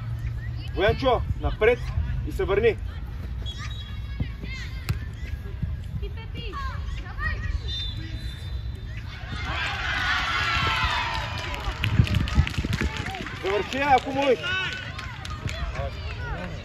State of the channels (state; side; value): identical; both; correlation 1.00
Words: Боянчо, напред и се върни. Завърши, ако можеш.